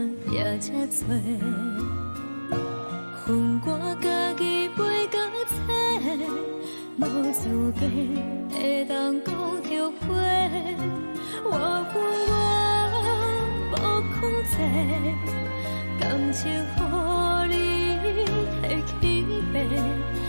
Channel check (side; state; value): both; inverted; correlation -1.00